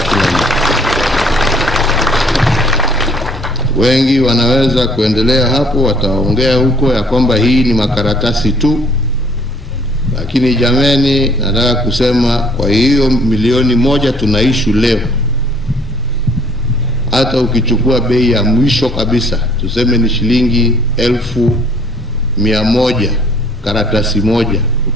kila mtu. Wengi wanaweza kuendelea hapo, wataongea huko ya kwamba hii ni makaratasi tu, lakini jameni, nataka kusema kwa hiyo milioni 1 tunaishu leo, hata ukichukua bei ya mwisho kabisa, tuseme ni shilingi 1,100 karatasi moja,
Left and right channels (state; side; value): normal; both; correlation 0.59